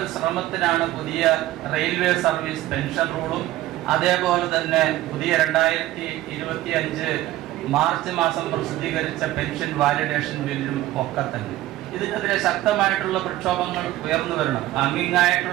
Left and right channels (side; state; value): left; quieter; 15.5 dB